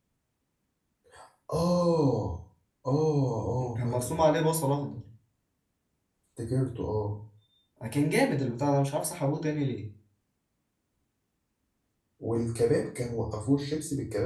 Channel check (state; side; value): identical; both; correlation 1.00